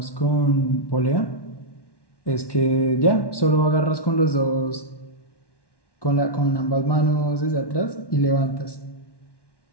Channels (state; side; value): late; right; 1.1 ms